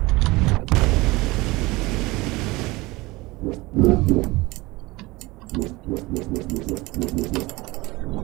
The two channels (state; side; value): quieter; left; 21.8 dB